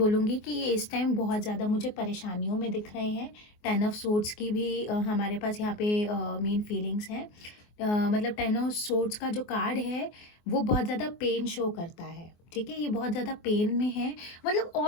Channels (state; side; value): late; right; 24 ms